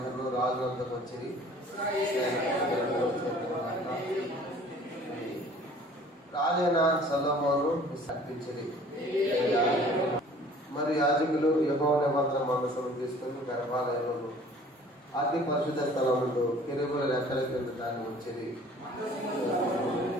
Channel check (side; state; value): both; normal; correlation 0.51